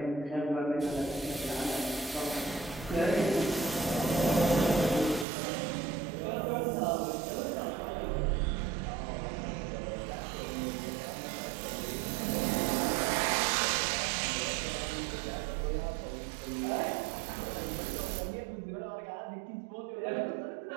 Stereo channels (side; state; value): left; drops out; at 5.2 s